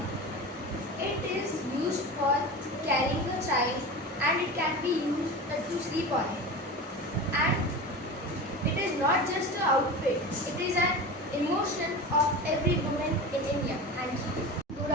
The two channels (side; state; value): both; normal; correlation 0.29